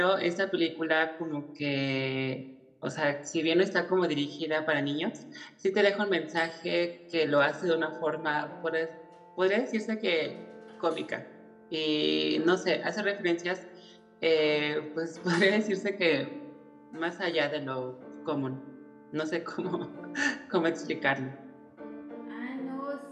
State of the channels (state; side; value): identical; both; correlation 1.00